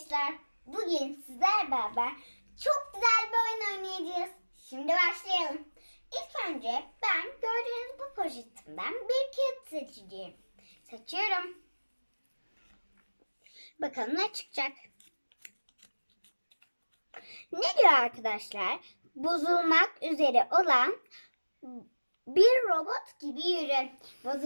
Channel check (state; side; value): inverted; both; correlation -1.00